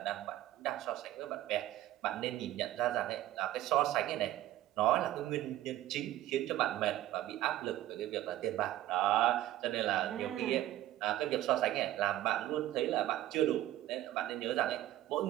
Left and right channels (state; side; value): quieter; left; 14.3 dB